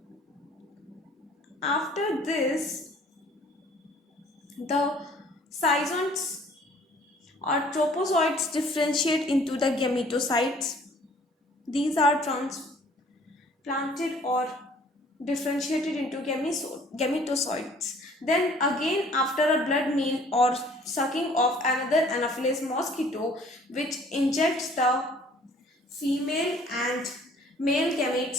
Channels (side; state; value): both; normal; correlation 0.55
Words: After this, the zygotes or tropozoites differentiate into the gametocytes. These are transplanted or differentiated into gametocytes. Then again, after a blood meal or sucking of another Anopheles mosquito, which injects the female and male